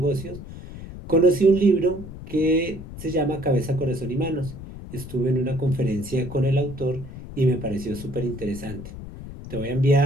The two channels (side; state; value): left; noise; rumble, 12 dB below the sound